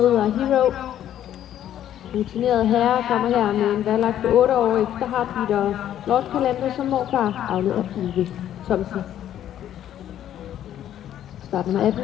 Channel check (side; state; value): right; quieter; 11.1 dB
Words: Hero. Rutineret herre kommer her med en valglagt på 8 år efter Heartbeat og Lord Calendar som morfar, afledt af Uwe Thomsen. Start nummer 18,